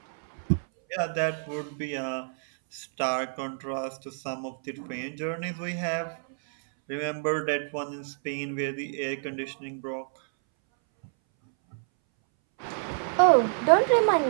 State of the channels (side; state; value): left; silent; 59 dB below the other